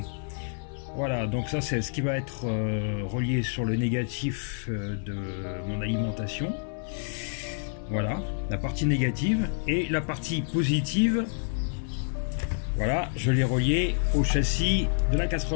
Voilà, donc ça c'est ce qui va être relié sur le négatif de mon alimentation. Voilà, la partie négative et la partie positive. Voilà, je l'ai relié au châssis de la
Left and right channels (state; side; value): silent; right; digital silence